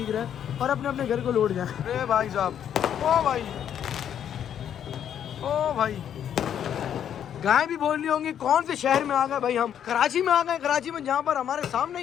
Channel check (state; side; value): quieter; right; 9.4 dB